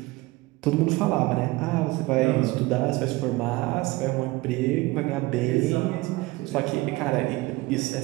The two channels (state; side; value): quieter; left; 20.7 dB